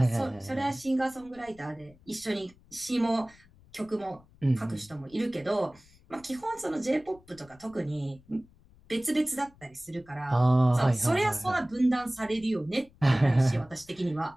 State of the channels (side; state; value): left; noise; rumble, 27 dB below the sound